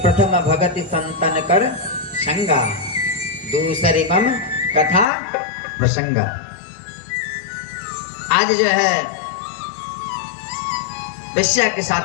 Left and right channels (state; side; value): drops out; right; at 5.1 s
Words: प्रथम भगति संतन कर संगा, दूसरी मम कथा प्रसंग। आज जो है वेश्या के